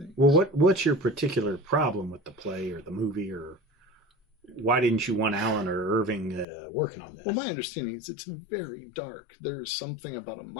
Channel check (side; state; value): right; drops out; at 6.5 s